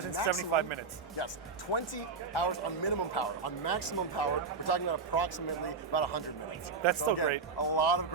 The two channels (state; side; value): quieter; left; 4.8 dB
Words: and maximum- 75 minutes. Yes, 20 hours on minimum power. On maximum power, we're talking about approximately about 100 minutes. That's so still again, great. A lot of